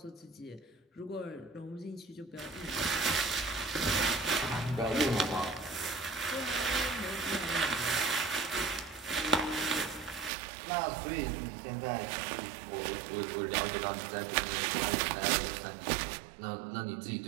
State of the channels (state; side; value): drops out; left; at 10.3 s